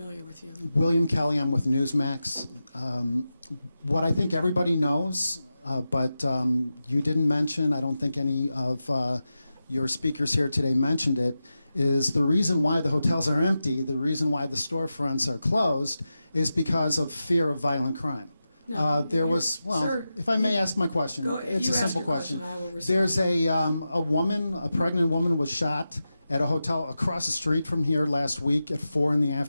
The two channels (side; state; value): both; inverted; correlation -0.92